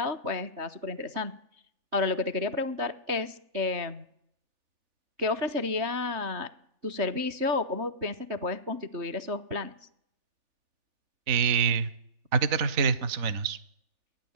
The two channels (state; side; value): late; left; 3.4 ms